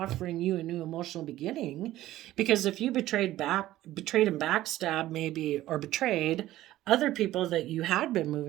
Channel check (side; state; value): left; quieter; 14.9 dB